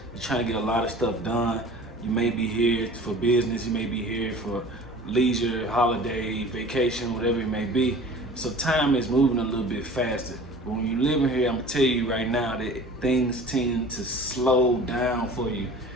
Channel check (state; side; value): normal; both; correlation 0.43